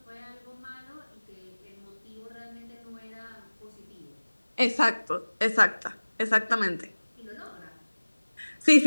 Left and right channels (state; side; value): inverted; both; correlation -1.00